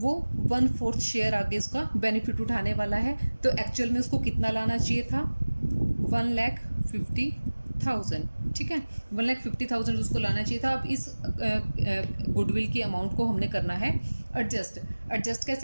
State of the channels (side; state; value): both; inverted; correlation -1.00